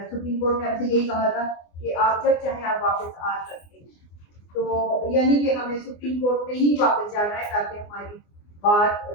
सुप्रीम कोर्ट ने हमसे यही कहा था कि आप जब चाहें आप वापस आ सकते हैं, तो यानी कि हमें सुप्रीम कोर्ट में ही वापस जाना है ताकि हमारी बात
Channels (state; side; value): late; right; 24 ms